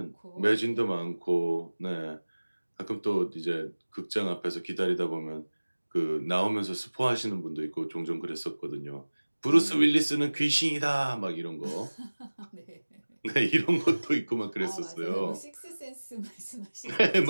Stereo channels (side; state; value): both; inverted; correlation -1.00